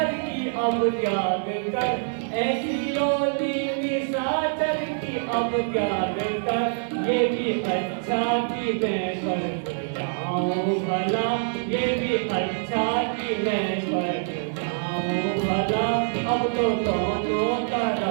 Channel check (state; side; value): silent; left; 62 dB below the other